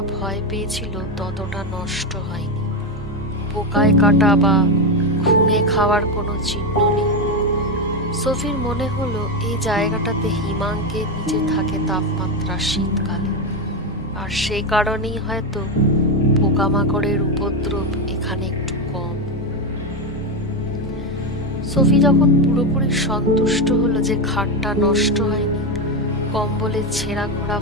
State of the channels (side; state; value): both; normal; correlation 0.11